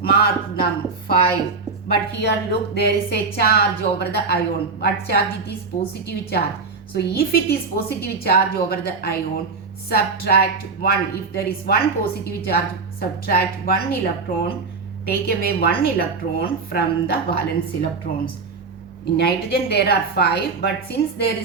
Mark them 5. But here look, there is a charge over the ion. What charge? It is positive charge. So if it is positive charge over the ion, subtract 1. If there is 1 positive charge, subtract 1 electron. Take away 1 electron from the valence electrons. In nitrogen there are 5, but since there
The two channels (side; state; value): left; quieter; 4.5 dB